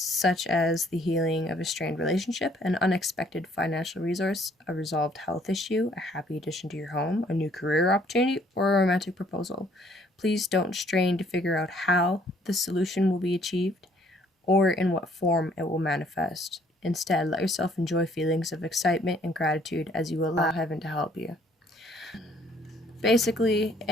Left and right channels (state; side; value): normal; both; correlation 0.62